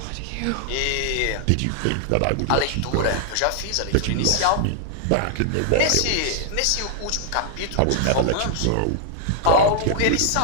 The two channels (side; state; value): both; different; correlation -0.01